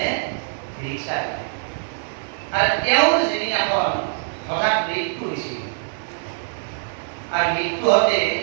ৰিক্সা দিলে। আৰু তেওঁৰ যিদিনাখন হঠাৎ মৃত্যু হৈছিল, আৰু মৃত্যু হওঁতে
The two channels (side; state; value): left; silent; digital silence